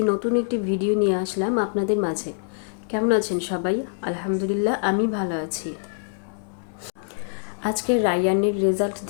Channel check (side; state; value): right; silent; digital silence